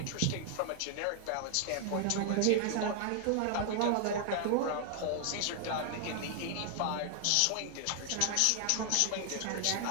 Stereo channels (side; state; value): both; different; correlation 0.00